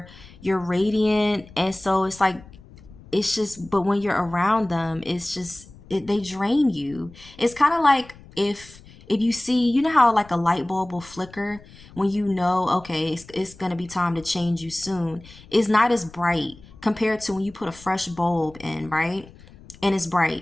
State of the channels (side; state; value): left; noise; rumble, 21 dB below the sound